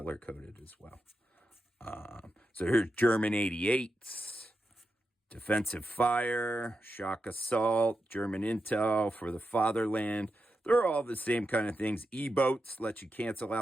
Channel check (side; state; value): both; normal; correlation 0.88